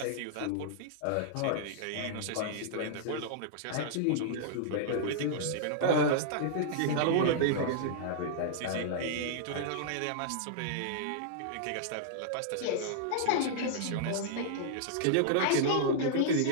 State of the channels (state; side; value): different; both; correlation -0.01